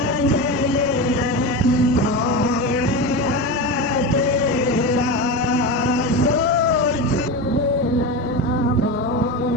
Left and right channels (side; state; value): both; normal; correlation 0.21